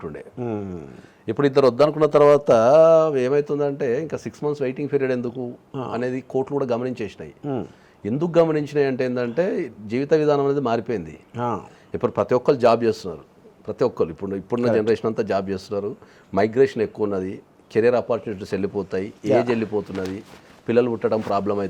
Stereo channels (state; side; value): identical; both; correlation 1.00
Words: ఇప్పుడు ఇద్దరు వద్దనుకున్న తర్వాత ఏమవుతుందంటే ఇంకా 6 months వెయిటింగ్ పీరియడ్ ఎందుకు అనేది కోర్టులు కూడా గమనించేసినాయి. ఎందుకు గమనించినాయి అంటే ఏంటంటే జీవిత విధానం అనేది మారిపోయింది. ఇప్పుడు ప్రతి ఒక్కరు జాబ్ చేస్తున్నారు, ప్రతి ఒక్కరు ఇప్పుడున్న జనరేషన్ అంతా జాబ్ చేస్తున్నారు. మైగ్రేషన్ ఎక్కువ ఉన్నది, కెరీర్ ఆపర్చునిటీస్ వెళ్ళిపోతాయి, ఏజ్ వెళ్ళిపోతున్నది, పిల్లలు పుట్టడం ప్రాబ్లం